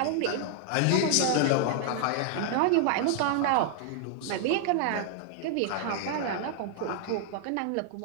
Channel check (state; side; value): different; both; correlation 0.00